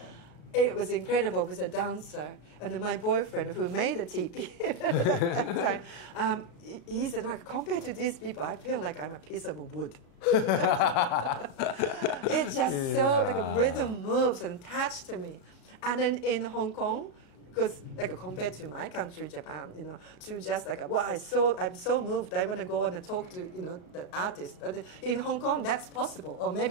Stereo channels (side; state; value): right; late; 35 ms